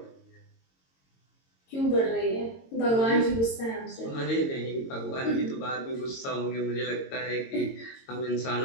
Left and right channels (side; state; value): right; late; 22 ms